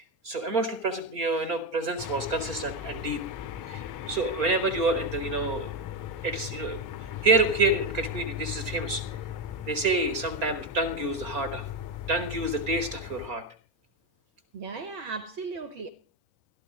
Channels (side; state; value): left; late; 4.3 ms